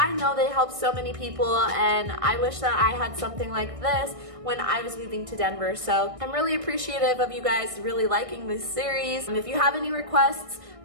know they help so many people, and I wish that I had something like this when I was moving to Denver. So I'm really appreciative of you guys really liking this series. And if you have any requests,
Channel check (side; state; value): left; late; 1.6 ms